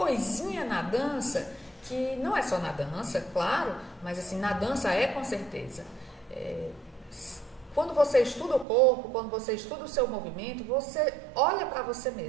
na dança, que não é só na dança, claro, mas assim, na dança com certeza. Quando você estuda o corpo, quando você estuda o seu movimento, você olha para você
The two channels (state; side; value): drops out; left; at 8.7 s